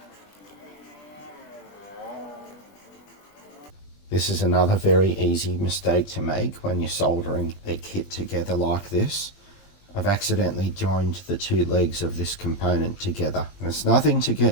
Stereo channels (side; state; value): right; late; 20 ms